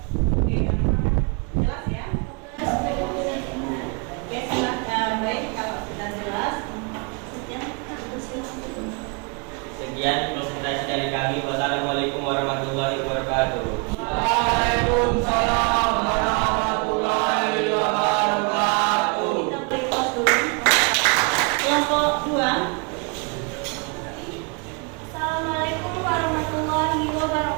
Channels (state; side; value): quieter; left; 33.2 dB